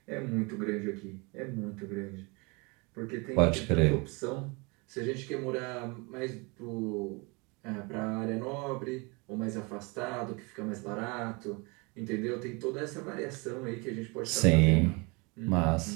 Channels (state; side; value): quieter; left; 28.8 dB